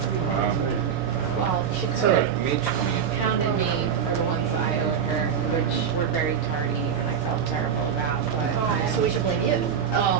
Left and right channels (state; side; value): quieter; left; 7.7 dB